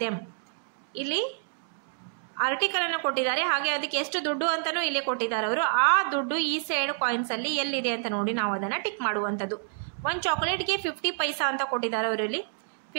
them. ಇಲ್ಲಿ ಆರ್ಟಿಕಲನ್ನು ಕೊಟ್ಟಿದ್ದಾರೆ, ಹಾಗೆ ಅದಕ್ಕೆ ಎಷ್ಟು ದುಡ್ಡು ಅಂತಲೂ ಇಲ್ಲಿ ಕೊಟ್ಟಿದ್ದಾರೆ ಅವರು. ಆ ದುಡ್ಡು ಈ ಸೈಡ್ ಕಾಯಿನ್ಸಲ್ಲಿ ಎಲ್ಲಿದೆ ಅಂತ ನೋಡಿ ನಾವು ಅದನ್ನು ಟಿಕ್ ಮಾಡುವಂಥದ್ದು. ಒಂದು ಚಾಕ್ಲೇಟ್ಗೆ 50 ಪೈಸಾ ಅಂತ ಕೊಟ್ಟಿದ್ದಾರೆ ಅವರು. ಇಲ್ಲಿ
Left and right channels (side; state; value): left; silent; digital silence